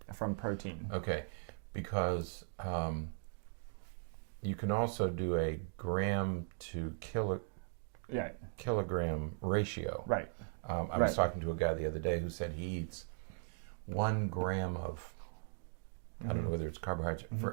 from protein? Okay, because you can also do a gram to kilogram ratio. Right. I was talking to a guy the other day who said he eats 1 gram of, I don't know whether it's carbohydrate,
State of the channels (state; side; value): silent; left; digital silence